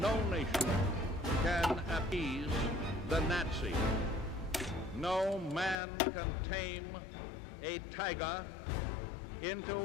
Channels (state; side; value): drops out; right; at 5.8 s